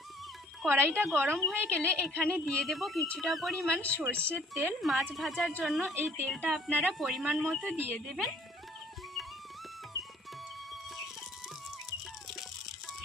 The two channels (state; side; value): normal; both; correlation 0.58